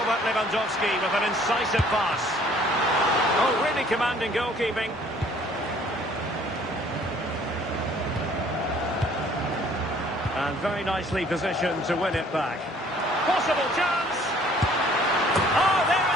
Lewandowski with an incisive pass. Oh, really commanding goalkeeping. And very nicely positioned to win it back. Possible chance! Oh, there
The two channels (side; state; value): both; normal; correlation 0.57